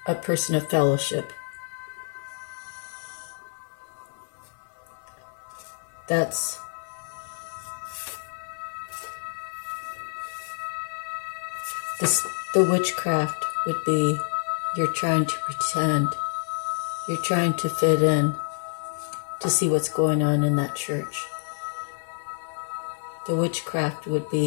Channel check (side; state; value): right; silent; digital silence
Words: a person of fellowship. That's the witchcraft would be, you're trying to pretend, you're trying to fit in to see what's going on in that church. The witchcraft would